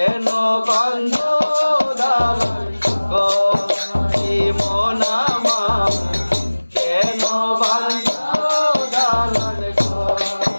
বান্ধ দালান ঘরে মন আমার কেন বান্ধ দালান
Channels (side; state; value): both; inverted; correlation -1.00